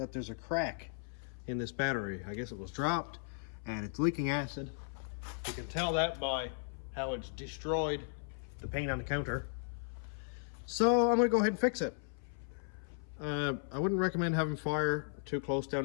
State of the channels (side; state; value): right; silent; 54 dB below the other